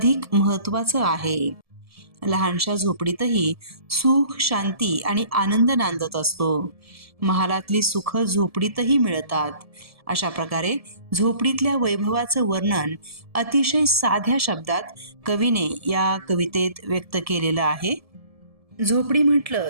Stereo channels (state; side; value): late; left; 1.7 ms